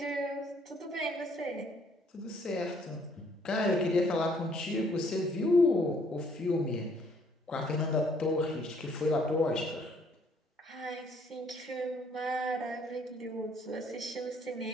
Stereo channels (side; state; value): both; normal; correlation 0.64